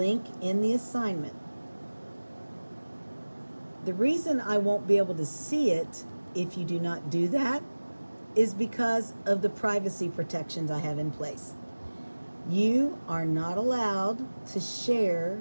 in the assignment. The reason I won't be able to see it if you do not do that is because of the privacy protections I have in place. You are not allowed to share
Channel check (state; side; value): inverted; both; correlation -1.00